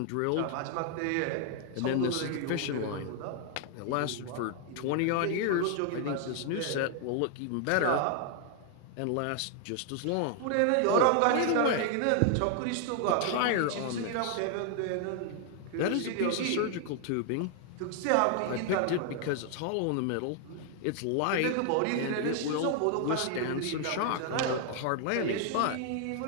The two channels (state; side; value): different; both; correlation 0.00